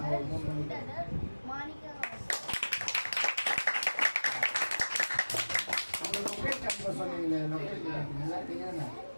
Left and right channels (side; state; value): both; inverted; correlation -1.00